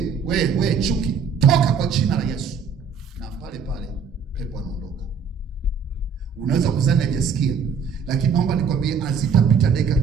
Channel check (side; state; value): left; quieter; 6.0 dB